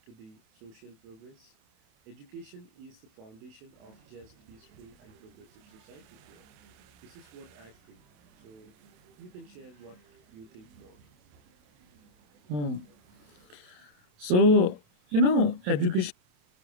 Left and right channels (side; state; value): left; late; 28 ms